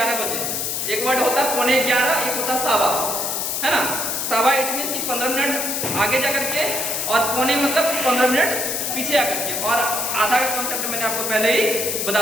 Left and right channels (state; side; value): noise; left; hiss, 1 dB below the sound